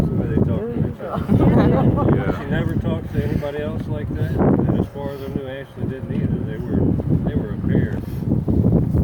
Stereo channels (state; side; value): identical; both; correlation 1.00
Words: the way they talked to each other. Yeah. She never talked to anybody else like that. And as far as I knew, Ashley didn't either. They were a pair.